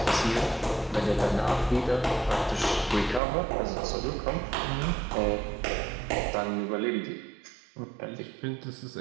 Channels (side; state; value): left; drops out; at 3.2 s